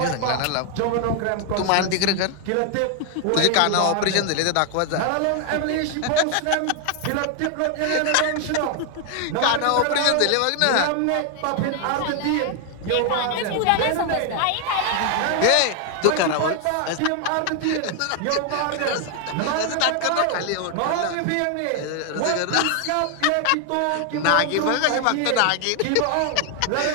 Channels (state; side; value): different; both; correlation 0.00